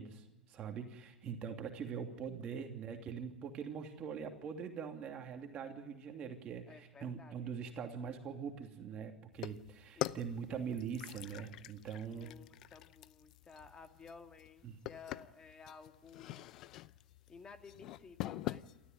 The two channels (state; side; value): normal; both; correlation 0.34